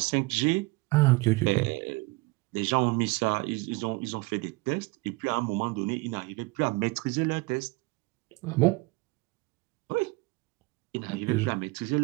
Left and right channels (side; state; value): left; quieter; 24.2 dB